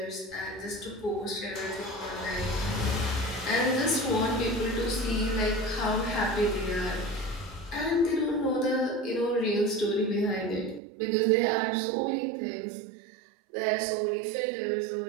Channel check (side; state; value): left; drops out; at 10.8 s